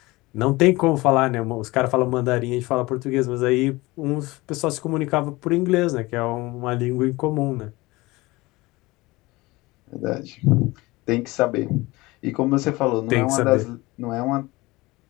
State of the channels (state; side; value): quieter; right; 21.3 dB